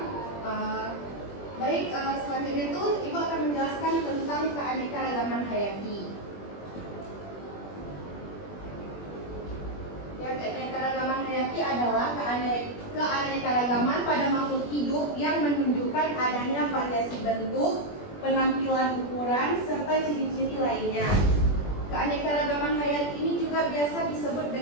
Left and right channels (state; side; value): late; right; 21 ms